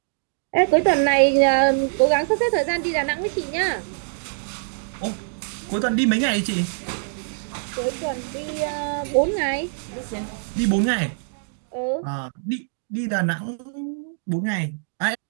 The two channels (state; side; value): silent; left; digital silence